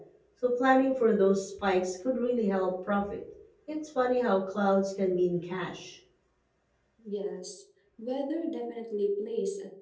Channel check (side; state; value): both; identical; correlation 1.00